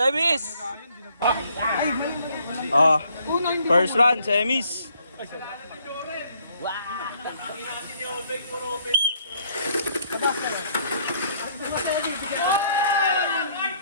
Oh, first round, semis.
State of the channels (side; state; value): both; inverted; correlation -0.65